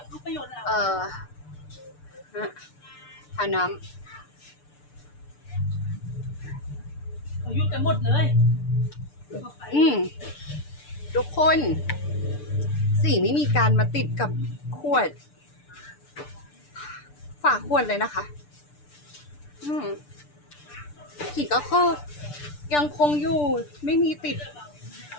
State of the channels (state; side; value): late; right; 6.8 ms